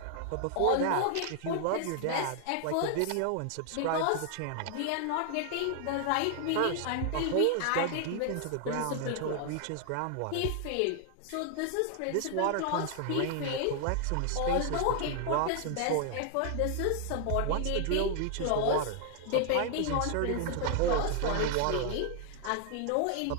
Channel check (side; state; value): both; different; correlation 0.00